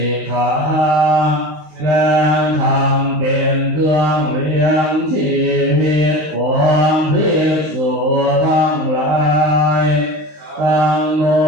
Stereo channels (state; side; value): late; left; 19 ms